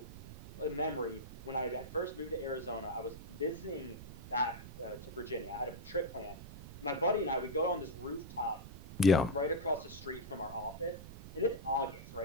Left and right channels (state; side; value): noise; right; rumble, 12 dB below the sound